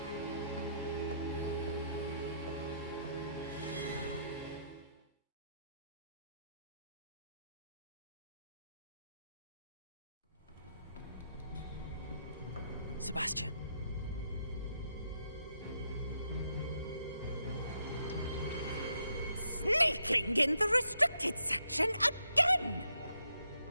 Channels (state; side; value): inverted; both; correlation -0.77